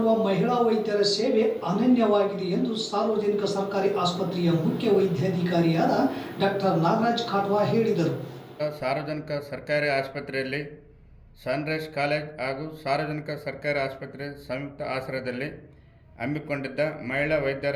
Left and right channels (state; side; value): identical; both; correlation 1.00